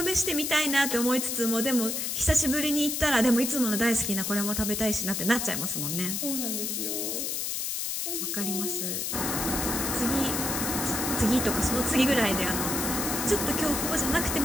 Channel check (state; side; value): noise; left; hiss, 1 dB below the sound